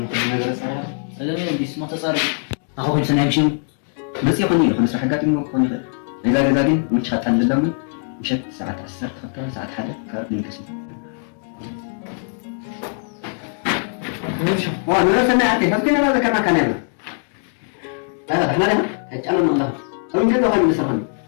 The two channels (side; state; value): right; silent; 56 dB below the other